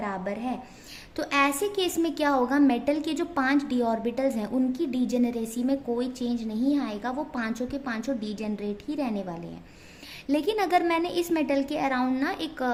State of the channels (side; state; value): both; identical; correlation 1.00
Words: है। तो ऐसे केस में क्या होगा, मेटल के जो 5 डी ऑर्बिटल्स हैं उनकी डीजेनरेसी में कोई चेंज नहीं आएगा, वो 5 के 5 डीजेनरेट ही रहने वाले हैं। लेकिन अगर मैंने इस मेटल के अराउंड ना एक